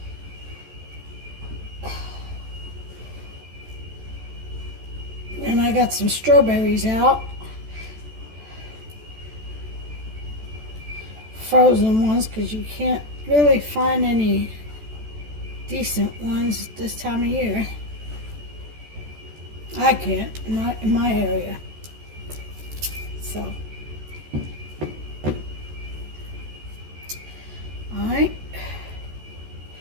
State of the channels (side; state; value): left; late; 14 ms